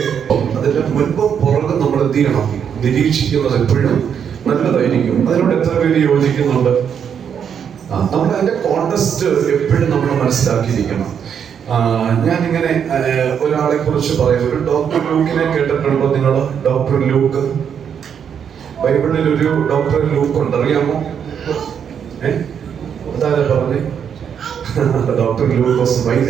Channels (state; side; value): quieter; left; 7.9 dB